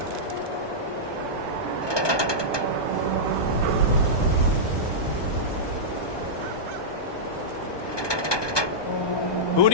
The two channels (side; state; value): right; late; 1.2 ms